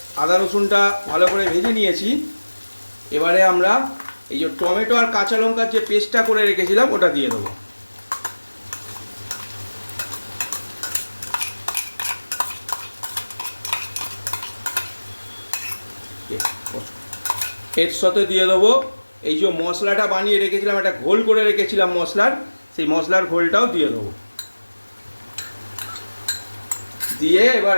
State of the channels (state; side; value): inverted; both; correlation -1.00